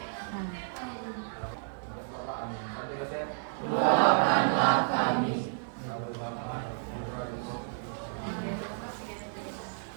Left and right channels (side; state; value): left; silent; 57 dB below the other